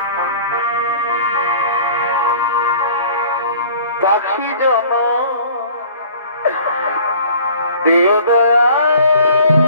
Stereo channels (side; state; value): both; inverted; correlation -0.49